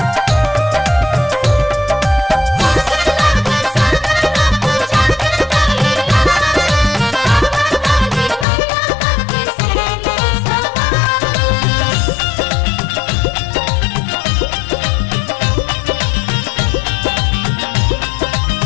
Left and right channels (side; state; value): right; drops out; at 8.5 s